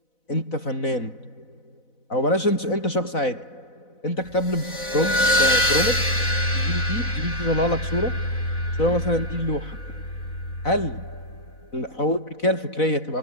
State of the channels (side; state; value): right; late; 4.0 ms